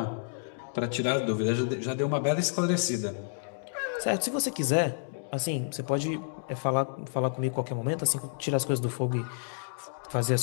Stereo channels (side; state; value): right; silent; digital silence